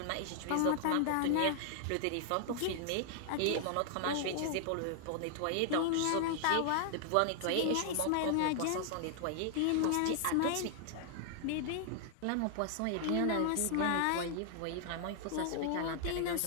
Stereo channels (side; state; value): both; different; correlation 0.00